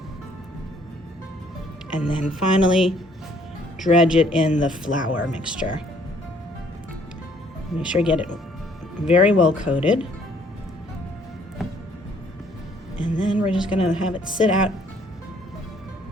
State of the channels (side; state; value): both; normal; correlation 0.62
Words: and then finally dredge it in the flour mixture. Make sure you get it very well coated, and then we're just gonna have it sit out